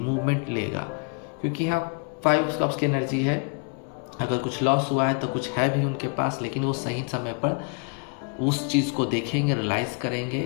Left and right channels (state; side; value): quieter; right; 36.5 dB